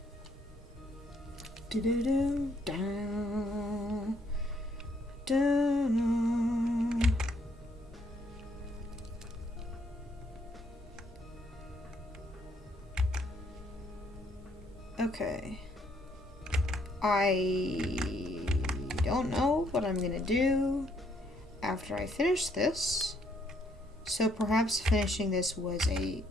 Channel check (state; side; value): normal; both; correlation 0.69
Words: Do-do-do, down, down. Okay. I don't know what I'm gonna do after I finish this. So perhaps finishing this was